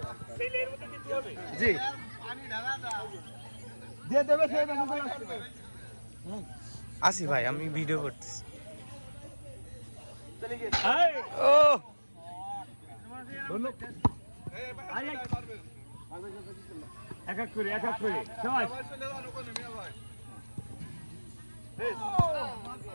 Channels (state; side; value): inverted; both; correlation -1.00